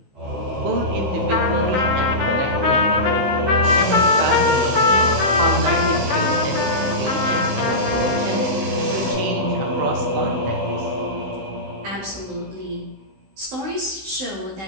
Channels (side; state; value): left; late; 16 ms